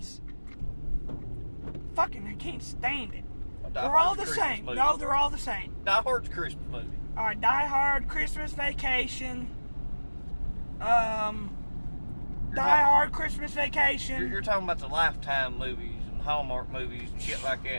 Fucking, I can't stand it. Die They're all Hard's the a Christmas same. movie. No, they're all the same. Die Hard's a Christmas movie. Alright, Die Hard, Christmas Vacation. Die Hard, Christmas Vacation. You're talking about the Lifetime movies and Hallmark movies and shit like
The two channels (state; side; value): inverted; both; correlation -1.00